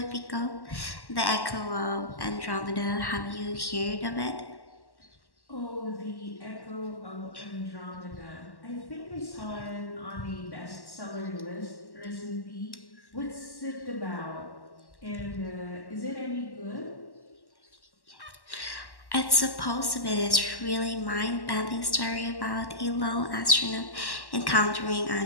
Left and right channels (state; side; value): late; right; 1.1 ms